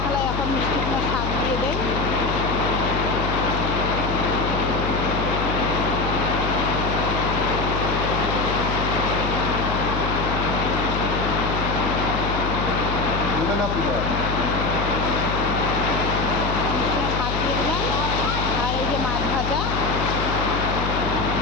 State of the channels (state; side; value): noise; left; hum, 3 dB below the sound